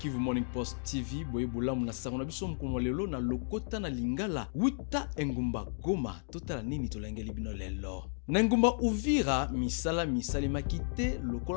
Morning Post TV boye bolamu na sango na biso mkono lelo na lokota na Lingala wita engumba Goma totala nini tolengeli bino lelo. Na ngumba Uvira misala makite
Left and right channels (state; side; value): silent; right; digital silence